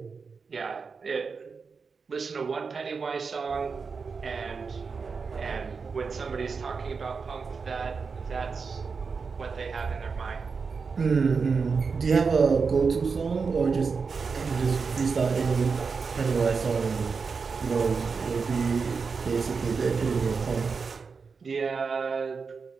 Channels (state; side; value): quieter; left; 5.1 dB